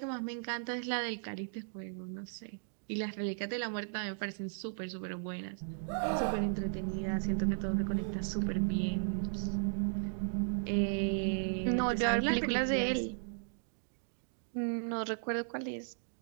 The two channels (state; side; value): silent; left; digital silence